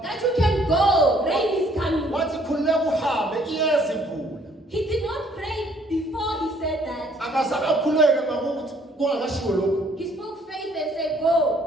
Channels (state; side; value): normal; both; correlation 0.63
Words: that you can go, rain is coming. Wathi khululeka uhambe iyeza imvula. He did not pray before he said that. Akazange akhuleke ngakuthi kungakashiwo lokhu. He spoke faith and said, go,